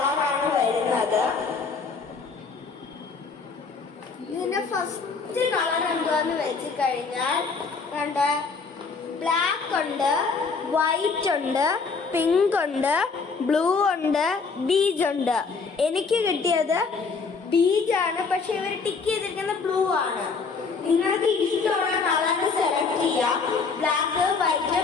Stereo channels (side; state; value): right; quieter; 4.8 dB